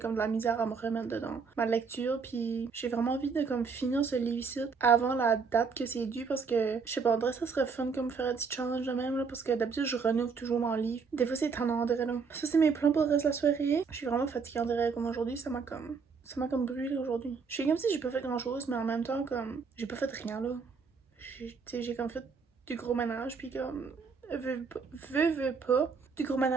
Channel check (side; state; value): left; quieter; 5.3 dB